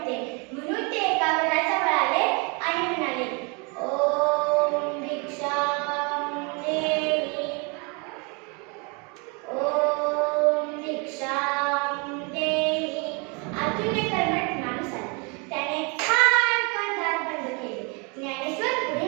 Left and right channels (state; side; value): quieter; left; 32.2 dB